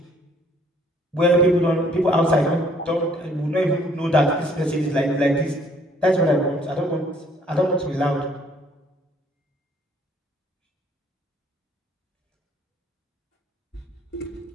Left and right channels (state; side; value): normal; both; correlation 0.61